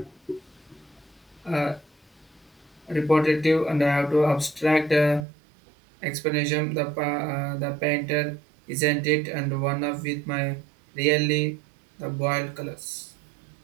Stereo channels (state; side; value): drops out; left; at 5.2 s